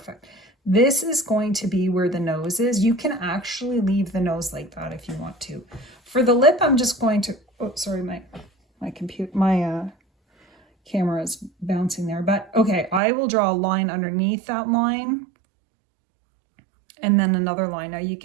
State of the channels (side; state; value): left; drops out; at 13.0 s